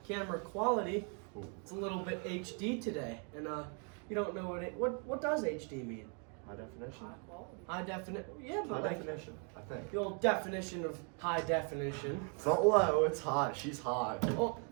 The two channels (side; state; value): left; quieter; 39.4 dB